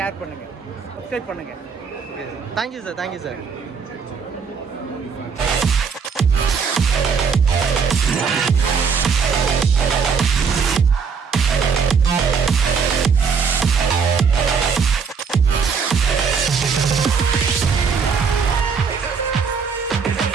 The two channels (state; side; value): quieter; left; 5.8 dB